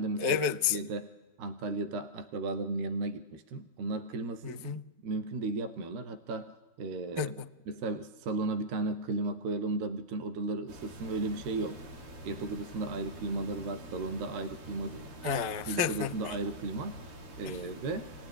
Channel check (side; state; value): left; late; 12 ms